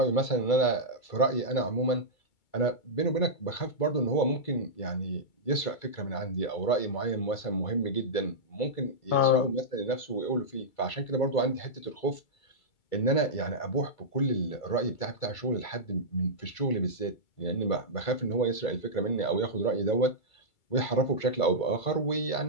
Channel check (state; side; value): late; right; 2.3 ms